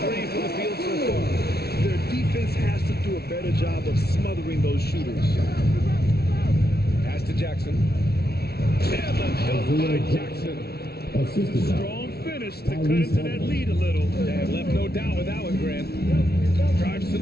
3 from the field so far. Their defense has to do a better job of smothering those shooters. Pass to Jackson. And the dunk by Jackson. Strong finish to cut into that lead a little. And left no doubt with that one, Grant. Drives to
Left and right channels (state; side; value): late; right; 0.46 ms